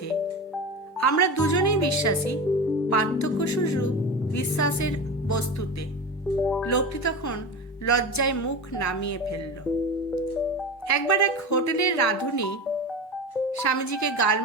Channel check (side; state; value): both; normal; correlation 0.27